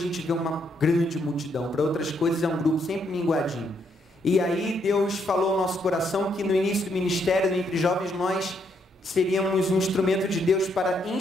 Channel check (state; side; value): normal; both; correlation 0.74